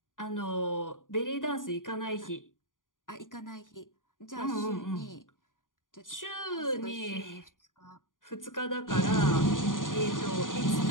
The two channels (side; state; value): right; late; 0.89 ms